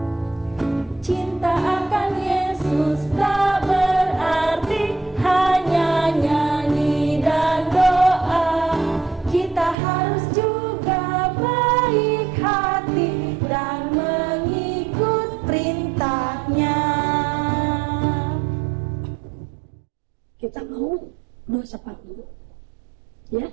mau doa sapa dulu. Ya,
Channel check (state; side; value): drops out; left; at 9.8 s